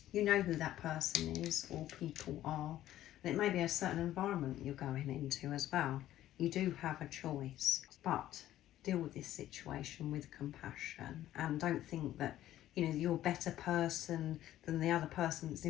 you know who that person is or people are. And it may be a certain environment you're going into as well. You do have a choice, but deal with this situation with compassion, and don't think that you're a better person than the other person that's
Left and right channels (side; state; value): right; quieter; 13.3 dB